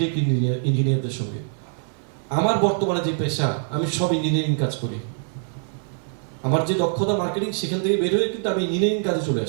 ইঞ্জিনিয়ারদের সঙ্গে। আমার বর্তমানে যে পেশা, আমি সব ইঞ্জিনিয়ারিং কাজ করি। আমার যে দক্ষতা মার্কেটিং, সেখান থেকে বের হয়ে কিন্তু আমি ইঞ্জিনিয়ারিং কাজে চলে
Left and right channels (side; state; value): left; silent; 60 dB below the other